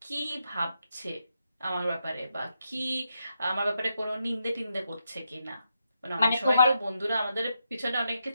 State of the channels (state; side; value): inverted; both; correlation -0.83